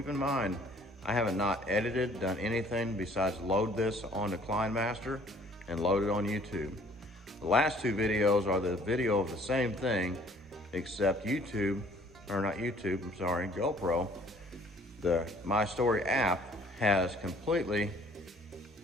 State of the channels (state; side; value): normal; both; correlation 0.57